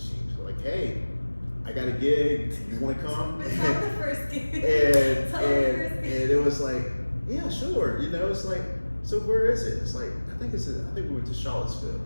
like, hey, I got a gig. You want to come? Tell the first gig. And it was like, yeah, sure. You know, it's like, so where is it? It's like, I think we went to Charlottesville,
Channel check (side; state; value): both; inverted; correlation -1.00